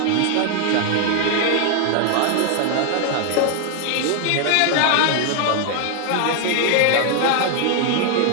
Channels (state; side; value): different; both; correlation 0.00